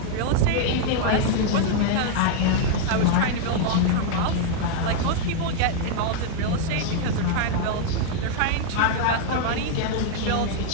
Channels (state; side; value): different; both; correlation 0.00